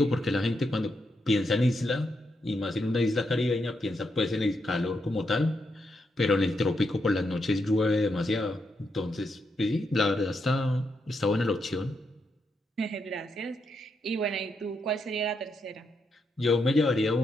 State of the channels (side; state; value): both; normal; correlation 0.81